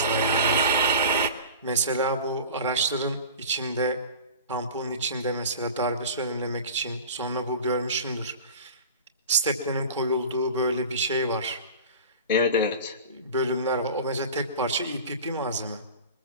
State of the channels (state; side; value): inverted; both; correlation -0.36